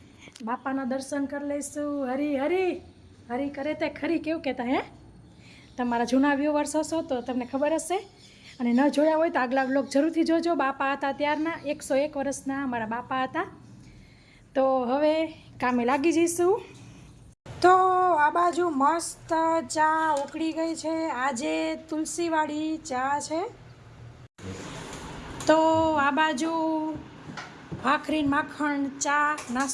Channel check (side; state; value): both; identical; correlation 1.00